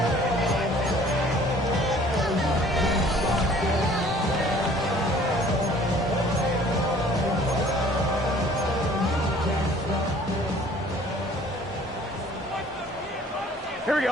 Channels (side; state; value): both; normal; correlation 0.53